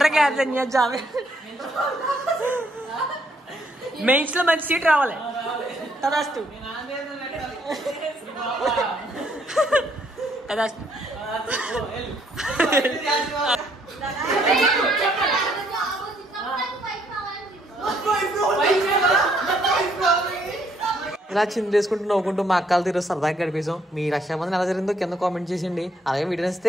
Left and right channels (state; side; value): normal; both; correlation 0.69